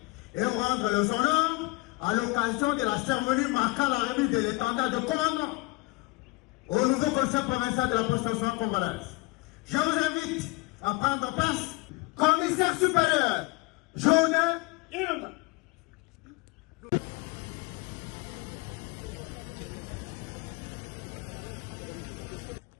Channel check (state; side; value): quieter; right; 23.7 dB